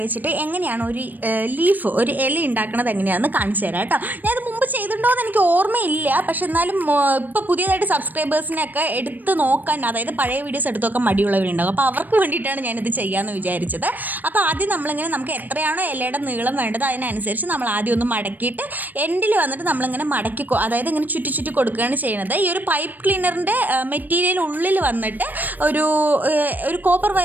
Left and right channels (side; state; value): left; late; 0.086 ms